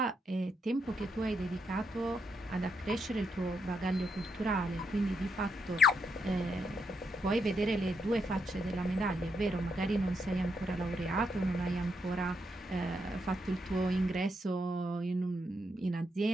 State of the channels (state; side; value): normal; both; correlation 0.80